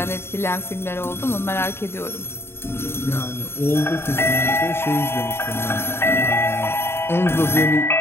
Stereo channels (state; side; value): late; right; 0.11 ms